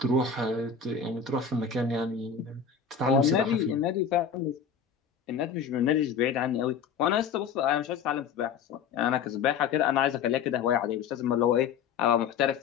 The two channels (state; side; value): quieter; right; 6.8 dB